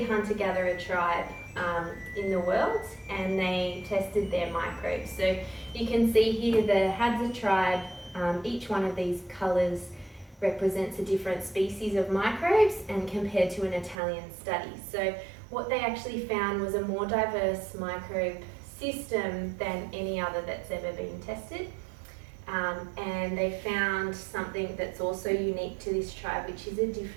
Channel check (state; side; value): drops out; left; at 14.0 s